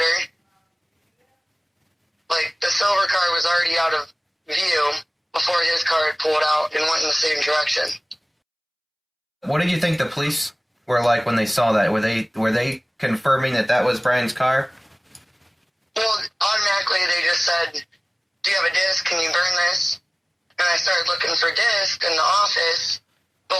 Like, the silver car was already out of view before his car had pulled out and went in the same direction. What did you think the police were like when they saw that? Were they confirming that was Bryan's car? Well, automatically they just said, do you have a disc? Can you burn this? And I started looking for disc in the office,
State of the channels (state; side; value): identical; both; correlation 1.00